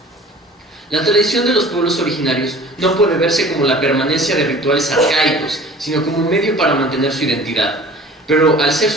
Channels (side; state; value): both; normal; correlation 0.45